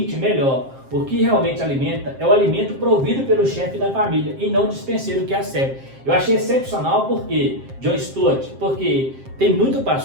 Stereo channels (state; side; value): late; left; 7.6 ms